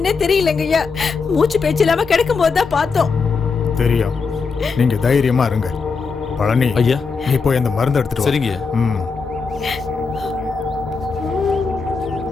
தெரியலங்கய்யா. மூச்சு பேச்சு இல்லாம கிடக்கும் போதுதான் பார்த்தோம். தெரியும், நீங்க தைரியமா இருங்க. பழனி ஐயா, நீ போய் அந்த மருந்து எடுத்துட்டு வா. சரிங்க.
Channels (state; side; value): quieter; right; 4.9 dB